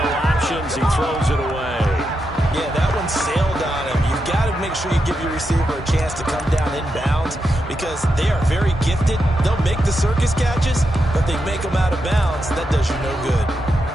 options, he throws it away. Yeah, that one sailed on him. You've got to make sure you give your receiver a chance to come down inbounds because they are very gifted. They'll make the circus catches, but they make them out of bounds. That does you no good.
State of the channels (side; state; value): both; normal; correlation 0.86